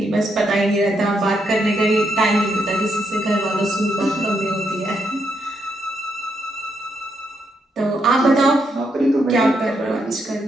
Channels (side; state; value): both; normal; correlation 0.78